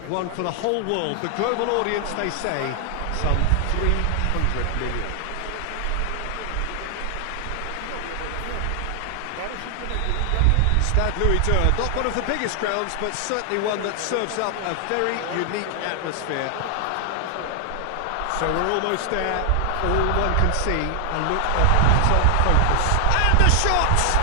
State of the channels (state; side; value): different; both; correlation 0.00